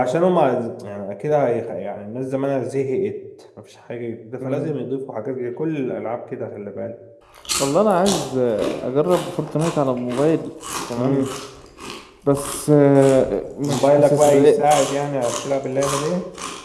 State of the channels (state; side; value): identical; both; correlation 1.00